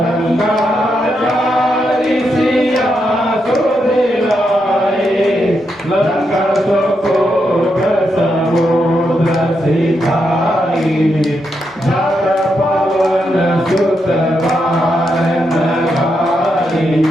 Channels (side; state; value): both; normal; correlation 0.82